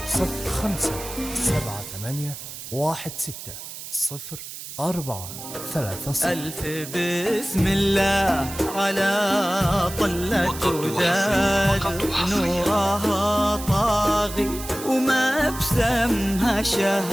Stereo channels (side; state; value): right; noise; hiss, 11 dB below the sound